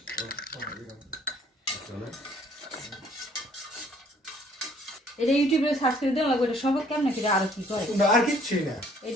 এটা ইউটিউবে সার্চ করে দেওয়া লাগবে এটা সব কেমন কি আর কি করে আর কিচ্ছুই না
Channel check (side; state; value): both; normal; correlation 0.59